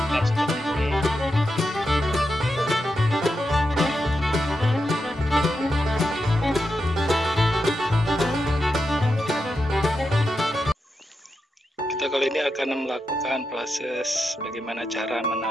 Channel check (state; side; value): normal; both; correlation 0.87